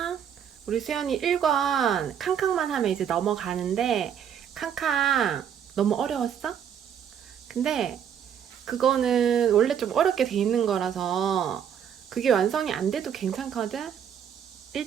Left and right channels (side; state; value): left; quieter; 8.6 dB